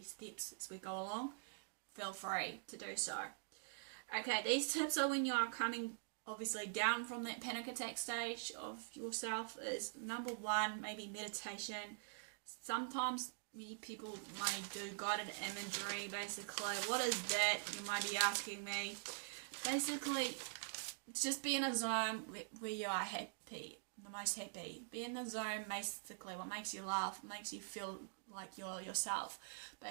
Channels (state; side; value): silent; left; digital silence